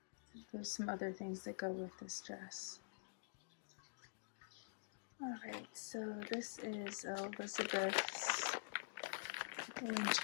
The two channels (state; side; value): silent; right; digital silence